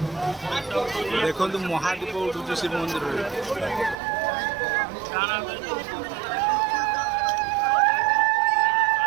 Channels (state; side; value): drops out; left; at 4.0 s